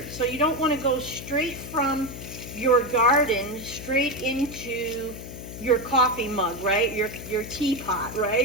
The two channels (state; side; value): noise; left; hum, 11 dB below the sound